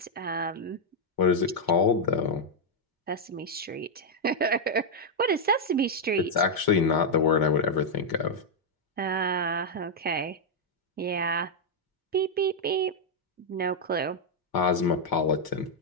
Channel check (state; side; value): normal; both; correlation -0.03